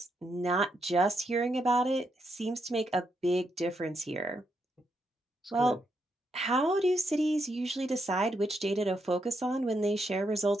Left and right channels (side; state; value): both; normal; correlation 0.80